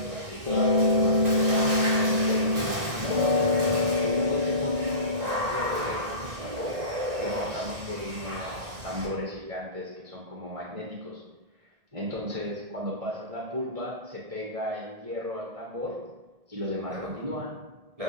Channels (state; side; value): late; left; 1.9 ms